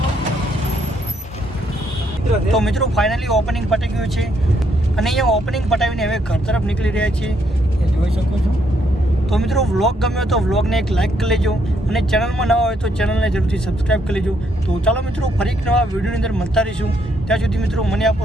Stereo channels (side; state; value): both; normal; correlation 0.73